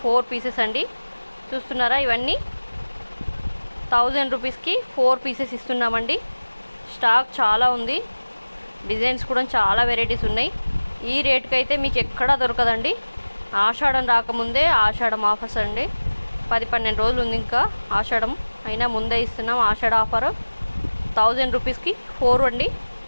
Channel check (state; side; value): inverted; both; correlation -1.00